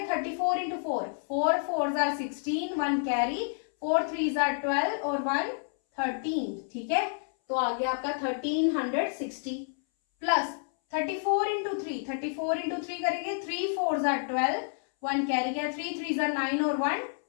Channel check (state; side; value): silent; right; 58 dB below the other